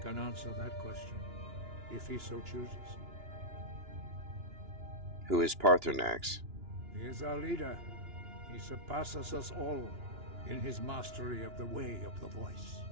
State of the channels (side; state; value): left; late; 2.9 ms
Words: answer that question, if he so chooses. Who is Paarthurnax? He is our leader. He surpasses us all in his mastery of the way of the voice.